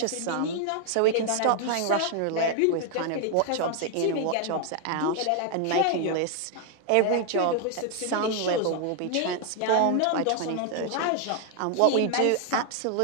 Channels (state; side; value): different; both; correlation 0.00